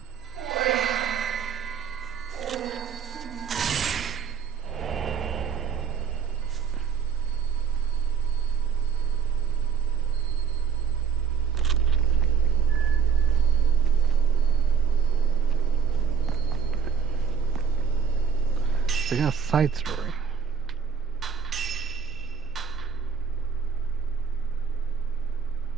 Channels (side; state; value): left; quieter; 6.8 dB